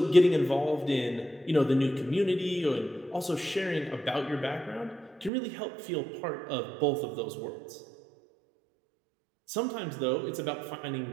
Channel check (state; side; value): drops out; left; at 5.3 s